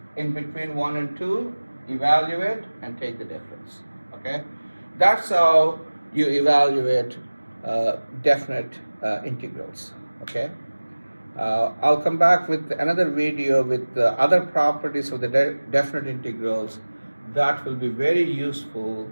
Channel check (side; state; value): both; inverted; correlation -1.00